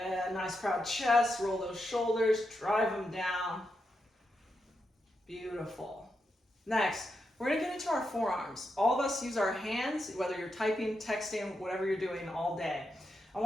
nice proud chest, roll those shoulders, drive them down. Beautiful. Next, we're gonna get into our forearms. All of us use our hands, whether you're typing, texting, whatever you're doing all day. I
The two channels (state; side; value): normal; both; correlation 0.85